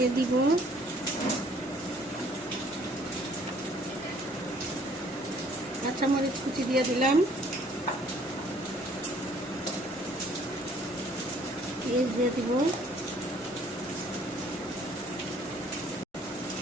দিব, কাঁচামরিচ কুচি দিয়ে দিলাম, পেঁয়াজ দিয়ে দিব,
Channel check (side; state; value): both; normal; correlation 0.59